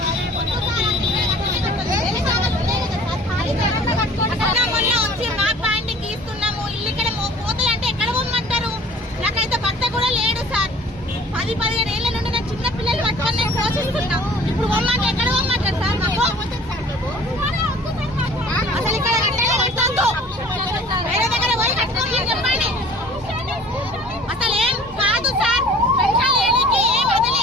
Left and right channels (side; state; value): both; normal; correlation 0.49